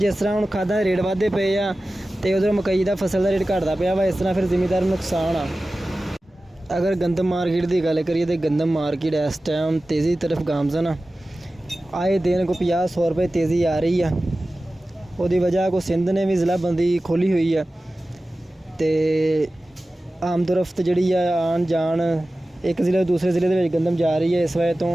तरह हम खादा के रेट वाधे पे आ तो उधर मकई का फसल का रेट घटता पाया वा, इस तरह फिर जिमीदार नुकसान आ। अगर गंदम मार्केट की गल करिए तो गंदम मार्केट इस टाइम तेज़ी की तरफ गामजन आ। आए दिन को 50-100 रुपए तेज़ी आ रही है। उसकी वजह को सिंध ने भी ज़िला बंदी खोली हुई है, तो आमदोरफ्त जी आन जान एक ज़िले दूसरे ज़िले के गंदम जा रही है। इस वजह तो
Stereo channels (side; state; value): both; normal; correlation 0.96